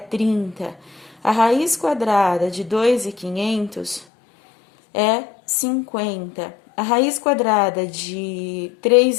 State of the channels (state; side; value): drops out; right; at 4.0 s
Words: A raiz quadrada de 2.500 é 50. A raiz quadrada de